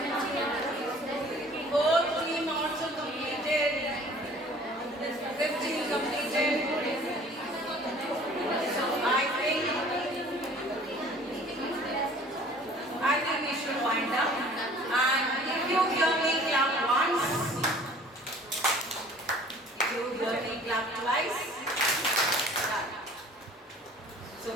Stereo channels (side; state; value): both; normal; correlation 0.50